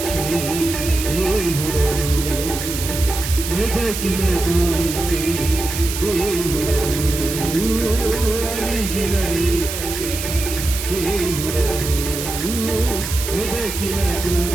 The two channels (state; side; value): noise; right; hiss, 6 dB below the sound